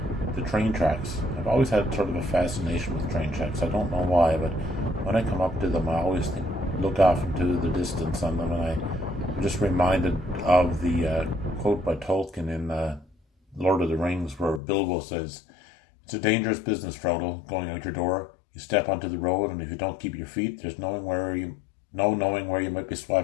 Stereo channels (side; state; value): right; drops out; at 14.6 s